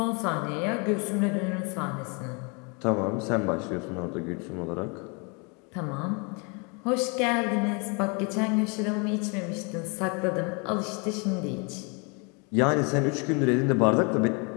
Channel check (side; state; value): right; quieter; 33.0 dB